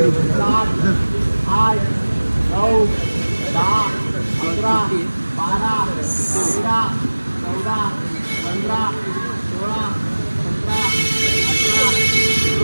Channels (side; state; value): both; inverted; correlation -1.00